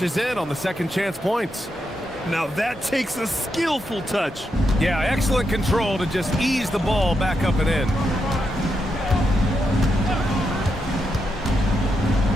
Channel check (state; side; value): normal; both; correlation 0.84